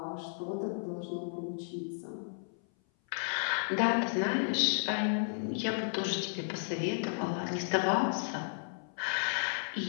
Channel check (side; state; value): right; silent; 55 dB below the other